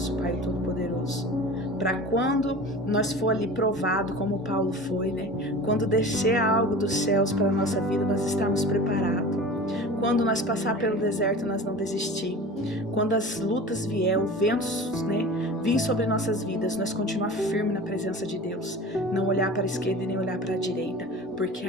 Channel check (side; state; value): both; normal; correlation 0.37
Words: Pai Todo-Poderoso, para quando nós for ali provado, como Paulo foi, né? Quando descer algo dos céus para a nossa vida, nós estamos preparados. Quando nós passar pelo deserto, nós não desistir. Quando as lutas vier, os ventos, né, vir sobre nossas vidas, nós continuar firme na presença de Deus. Não olhar para a esquerda e nem olhar para a direita, porque